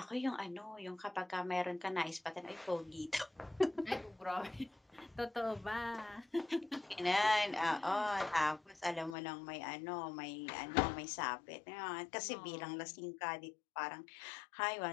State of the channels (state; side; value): drops out; right; at 9.2 s